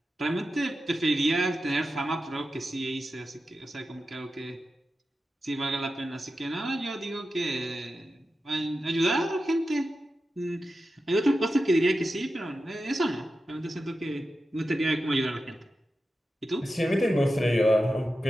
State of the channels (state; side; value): normal; both; correlation 0.91